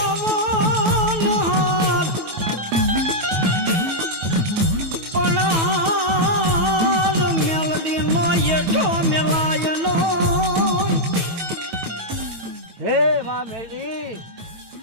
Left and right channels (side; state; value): left; late; 9.2 ms